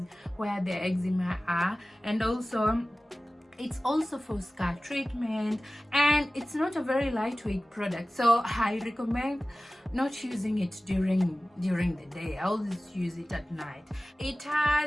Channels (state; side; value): normal; both; correlation 0.97